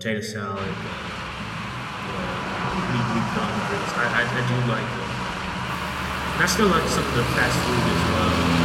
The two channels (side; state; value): both; identical; correlation 1.00